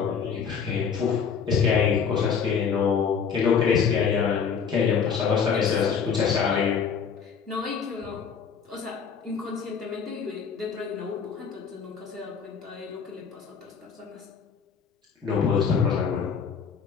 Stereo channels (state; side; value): quieter; right; 6.5 dB